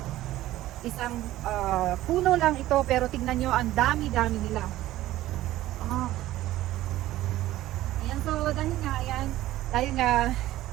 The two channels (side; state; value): left; quieter; 15.2 dB